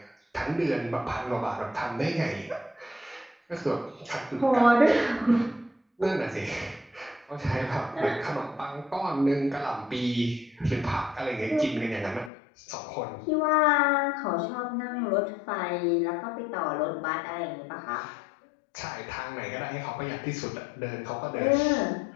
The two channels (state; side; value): drops out; right; at 12.3 s